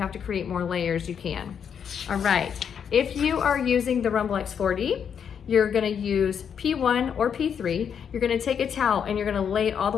have to create more layers, you can. All right, if you are using the Rumble X4D, you're gonna use P1 or P3. You're gonna take a towel and you're gonna lay it all the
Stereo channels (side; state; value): right; quieter; 7.6 dB